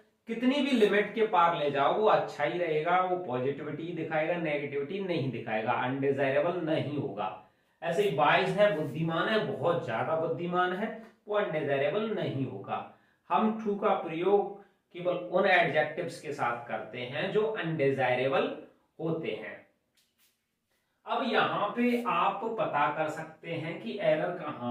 कितनी भी लिमिट के पार ले जाओ वो अच्छा ही रहेगा, वो पॉजिटिविटी दिखाएगा, नेगेटिविटी नहीं दिखाएगा, अनडिजायरेबल नहीं होगा। ऐसे ही वाइज है, बुद्धिमान है, बहुत ज्यादा बुद्धिमान है, वो अनडिजायरेबल नहीं होगा। हम टू का प्रयोग केवल उन एडजेक्टिव्स के साथ करते हैं जो अनडिजायरेबल होते हैं। अब यहां पे आप पता कर सकते हैं कि एरर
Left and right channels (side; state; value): both; identical; correlation 1.00